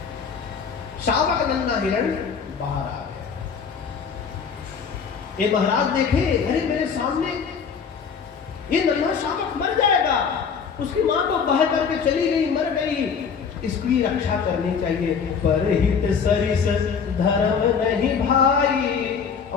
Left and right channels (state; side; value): quieter; right; 6.3 dB